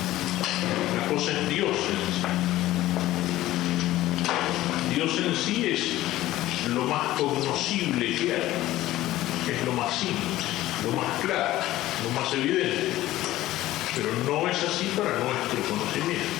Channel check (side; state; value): right; quieter; 15.6 dB